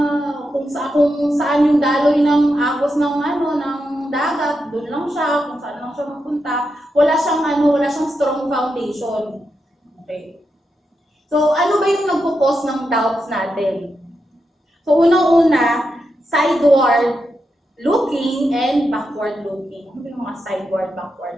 kung saan yung daloy ng agos ng dagat, doon lang siya, kung saan lang siya mapunta, wala siyang strong foundation. Okay. So, ano ba yung nagpo-cause ng doubts natin? So, unang-una, sideward looking and backward looking. Ano ba yung mga sideward,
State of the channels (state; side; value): normal; both; correlation 0.86